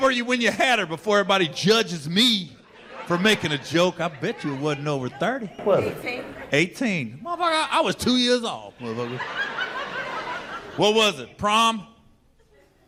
were you when you had her before everybody judges me for making a joke? I bet you it wasn't over 30. Was it? 18. 18. Motherfucker, I was 2 years old, motherfucker. What was it? Prom?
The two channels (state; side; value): identical; both; correlation 1.00